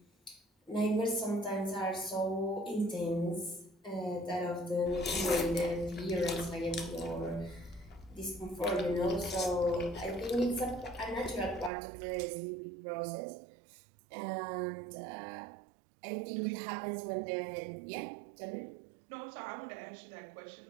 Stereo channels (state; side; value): drops out; left; at 11.7 s